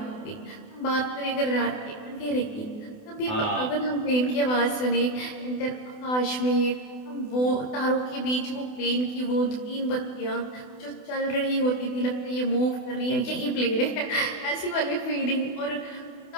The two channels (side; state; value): right; late; 28 ms